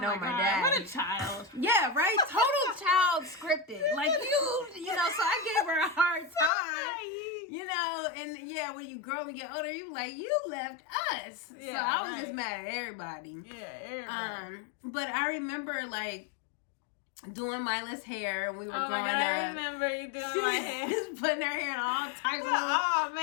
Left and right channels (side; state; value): right; drops out; at 6.5 s